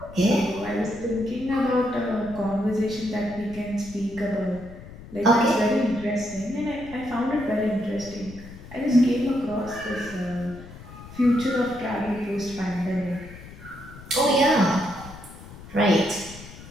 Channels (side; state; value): left; noise; rumble, 16 dB below the sound